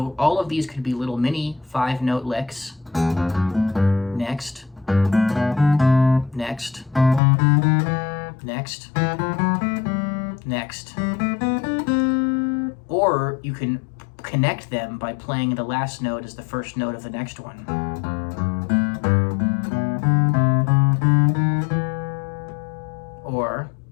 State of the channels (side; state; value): right; drops out; at 7.2 s